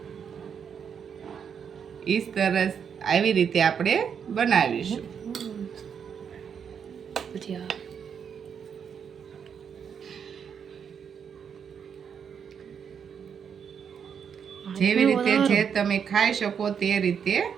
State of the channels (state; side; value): quieter; left; 7.3 dB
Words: સરસ આવી રીતે આપણે બનાવીશું. જેવી રીતે જે તમે ખાઈ શકો તે રીતે